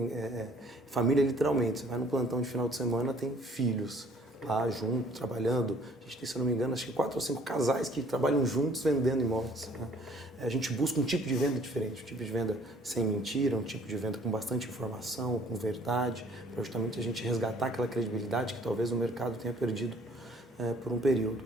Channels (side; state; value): both; normal; correlation 0.58